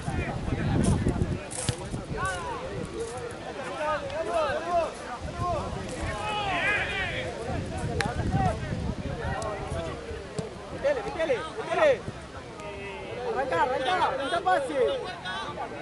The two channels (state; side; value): identical; both; correlation 1.00